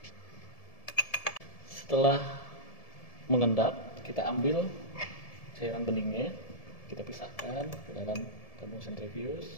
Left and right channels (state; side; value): late; right; 1.7 ms